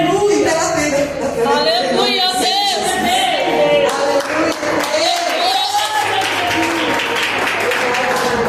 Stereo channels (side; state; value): both; identical; correlation 1.00